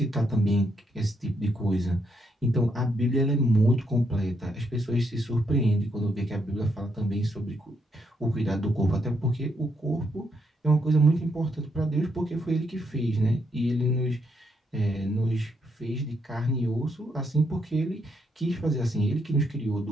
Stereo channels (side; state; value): both; normal; correlation 0.76